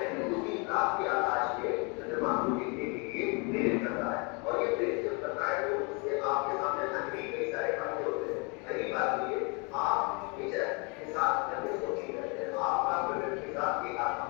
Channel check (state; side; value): quieter; right; 31.8 dB